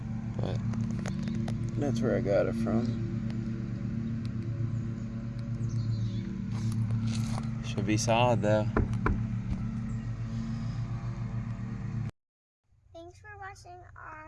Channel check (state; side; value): identical; both; correlation 1.00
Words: But that's where I got it from. Should be solid though. Thanks for watching